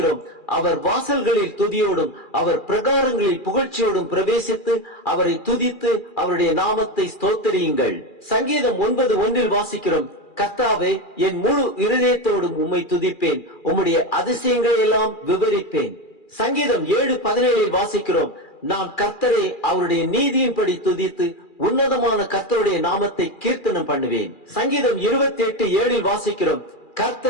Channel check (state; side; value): late; right; 2.4 ms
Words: அவர் வாசல்களில் துதியோடும் அவர் பிரகாரங்களில் புகழ்ச்சியோடும் பிரவேசித்து அவரை துதித்து அவருடைய நாமத்தை ஸ்தோத்திரியுங்கள். சங்கீதம் 9:1 வாசிக்கிறோம். கர்த்தாவே, என் முழு இருதயத்தோடும் உம்மை துதிப்பேன், உம்முடைய அதிசயங்களை எல்லாம் விவரிப்பேன். சங்கீதம் 7:17 வாசிக்கிறோம். நான் கர்த்தரை அவருடைய நீதியின்படி துதித்து உன்னதமான கர்த்தருடைய நாமத்தை கீர்த்தனம் பண்ணுவேன். சங்கீதம் 28:7 வாசிக்கிறோம்.